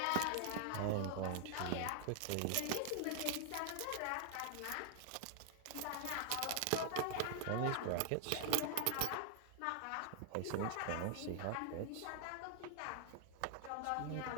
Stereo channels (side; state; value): both; different; correlation 0.00